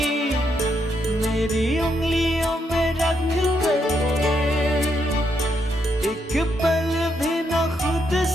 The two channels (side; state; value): both; normal; correlation 0.78